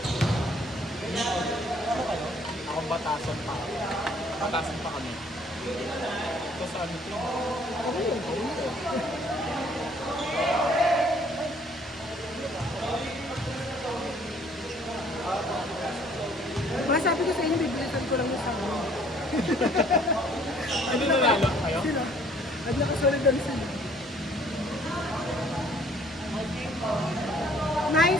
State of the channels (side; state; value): both; normal; correlation 0.59